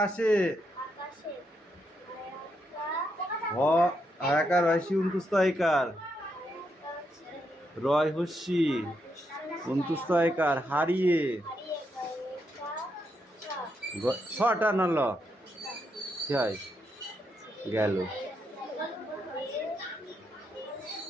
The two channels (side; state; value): both; normal; correlation 0.80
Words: হয়াকার হয়সি উন্তুস্তয়কার রয় হস্যি উন্তুস্তয়কার হারিয়ে ছটা নল হয় গেল।